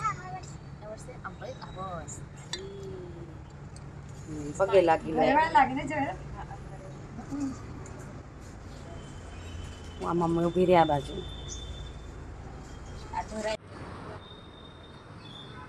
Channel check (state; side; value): identical; both; correlation 1.00